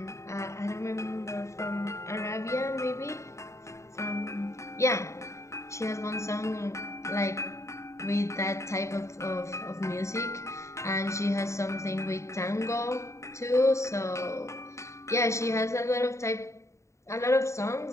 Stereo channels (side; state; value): right; late; 0.14 ms